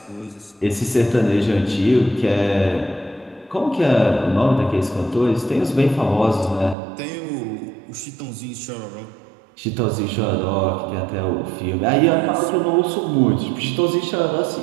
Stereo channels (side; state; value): left; drops out; at 6.8 s